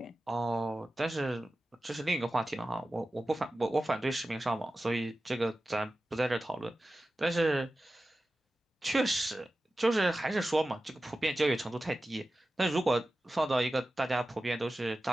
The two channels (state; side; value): normal; both; correlation 0.95